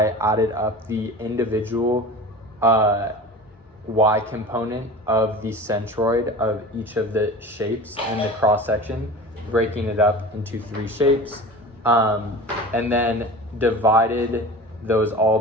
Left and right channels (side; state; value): both; normal; correlation 0.35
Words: added up the individual y component of the centroid of each of the shapes in the cross section, breaking it up into 3 shapes, and then divided those all